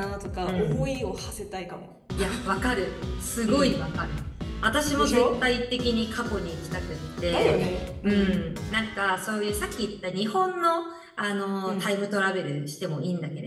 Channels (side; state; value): both; identical; correlation 1.00